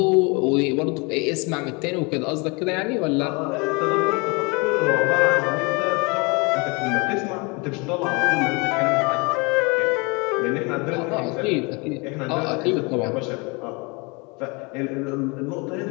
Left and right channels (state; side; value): quieter; right; 28.9 dB